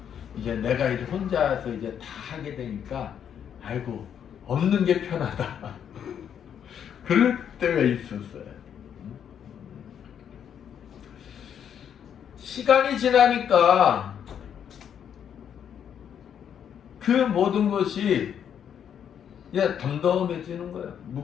이제 내가 이제 혼자서 이제 다 하게 되니까 아이고 없는 게 편하다. 그럴 때가 있었어요. 시간이 지나니까 그 모든 것이 이제 덤덤해지는 거예요.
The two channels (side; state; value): right; quieter; 8.6 dB